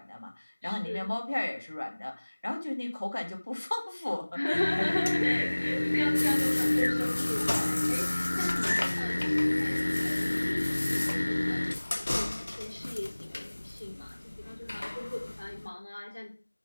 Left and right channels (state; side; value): inverted; both; correlation -1.00